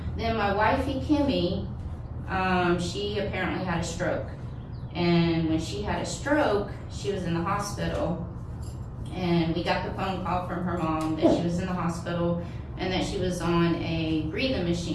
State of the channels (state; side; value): identical; both; correlation 1.00